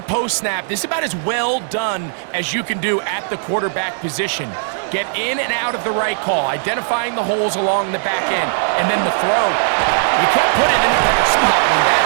post-snap. This is about as well done as you can do at the quarterback position. Get in and out of the right call, identifying the holes along the back end, and then the throw. You can't put it in a better spot. I mean,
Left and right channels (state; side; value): silent; left; digital silence